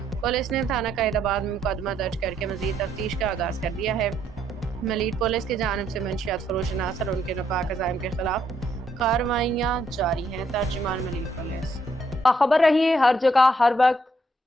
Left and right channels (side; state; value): both; normal; correlation 0.72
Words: پولیس نے تھانہ قائد آباد میں مقدمہ درج کر کے مزید تفتیش کا آغاز کر دیا ہے۔ ملیر پولیس کی جانب سے منشیات فروش عناصر اور ان کے ناپاک عزائم کے خلاف کارروائیاں جاری ہیں۔ ترجمان ملیر پولیس۔ باخبر رہیے ہر جگہ ہر وقت،